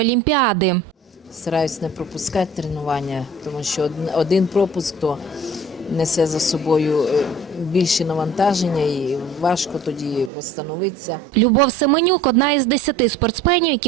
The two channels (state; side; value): drops out; left; at 10.3 s